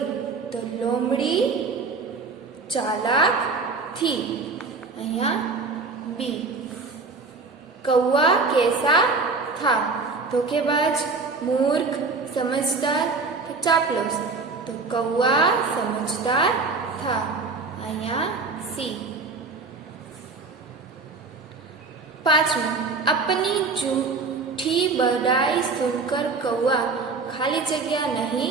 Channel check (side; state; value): left; quieter; 4.1 dB